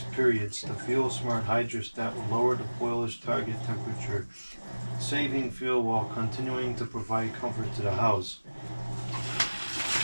periods, the fuel smart hydrostat will lower the boiler's target temperature, saving fuel while continuing to provide comfort to the house.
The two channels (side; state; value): both; inverted; correlation -1.00